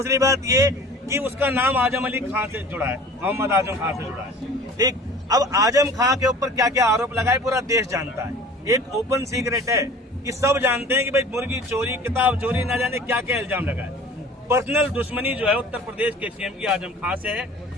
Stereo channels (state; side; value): normal; both; correlation 0.44